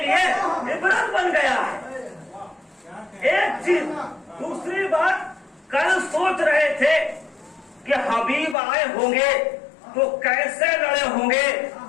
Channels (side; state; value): right; drops out; at 8.6 s